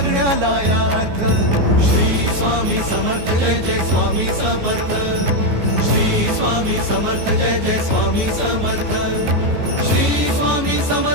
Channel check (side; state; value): left; late; 14 ms